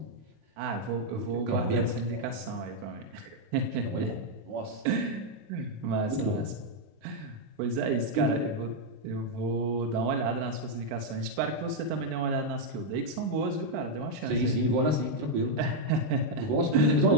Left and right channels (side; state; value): left; late; 19 ms